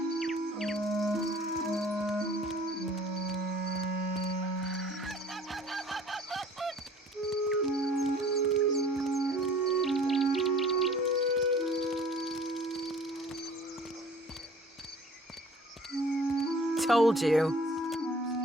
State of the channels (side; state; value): both; normal; correlation 0.50